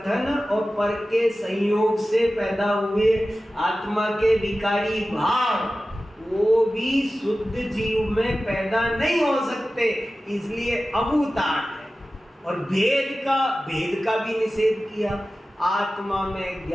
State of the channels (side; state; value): both; normal; correlation 0.95